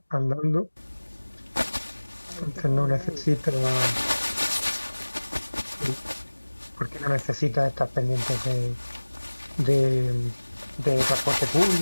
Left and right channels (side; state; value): both; inverted; correlation -1.00